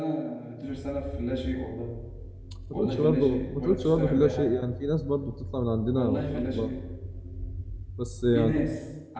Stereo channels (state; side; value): identical; both; correlation 1.00